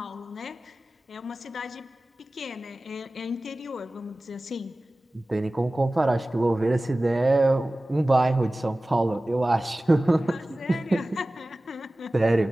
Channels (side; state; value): both; normal; correlation 0.97